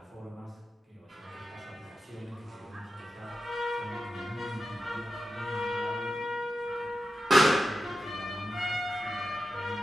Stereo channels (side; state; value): both; normal; correlation 0.92